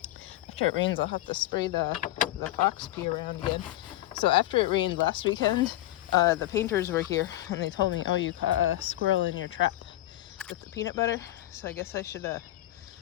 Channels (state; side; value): quieter; right; 15.3 dB